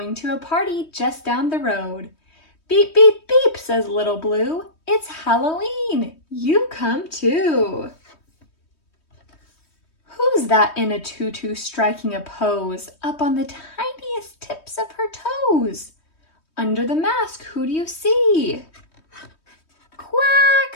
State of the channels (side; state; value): right; late; 3.2 ms